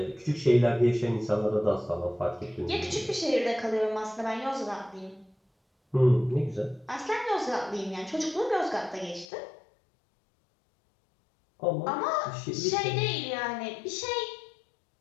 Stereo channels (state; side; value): drops out; right; at 9.2 s